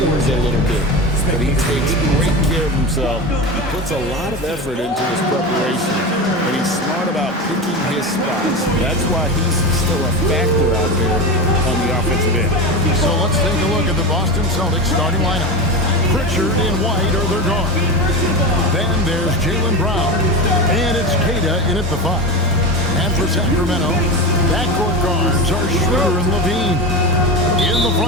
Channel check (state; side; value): normal; both; correlation 0.23